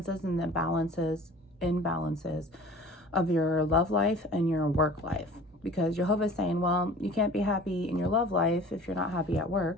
and the imbalances of your love life and your work life. Because Jehovah's saying, well, you can't be happy in your love life if you're not happy at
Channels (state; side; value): normal; both; correlation 0.44